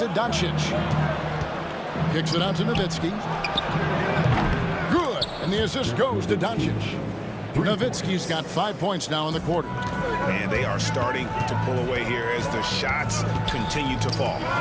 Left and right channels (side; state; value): both; identical; correlation 1.00